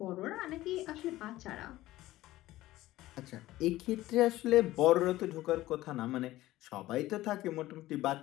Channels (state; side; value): quieter; right; 16.4 dB